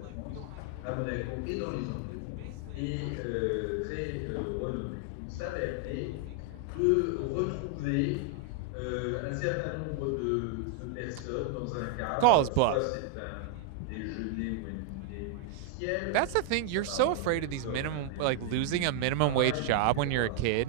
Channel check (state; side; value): different; both; correlation 0.00